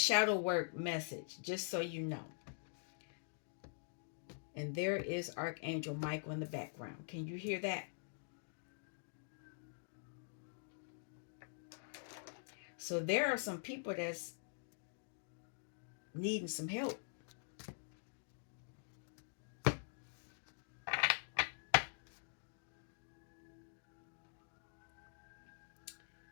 work message, just so you know. And there is Archangel Michael in the background. Can you hear that? So there are some people that's needing some help.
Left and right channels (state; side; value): silent; right; digital silence